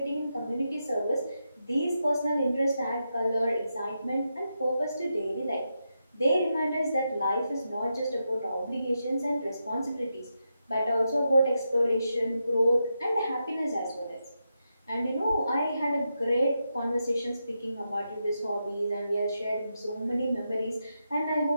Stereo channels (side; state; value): both; inverted; correlation -0.86